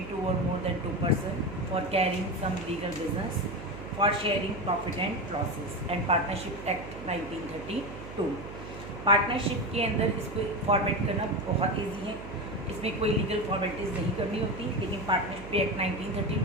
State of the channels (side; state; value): right; noise; hum, 12 dB below the sound